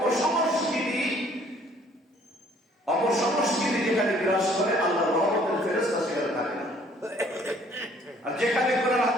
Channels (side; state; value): both; normal; correlation 0.59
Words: যেখানে বিরাজ করে আল্লাহ রহমতের ফেরেশতা সেখানে থাকে না। আর যেখানে কোরআন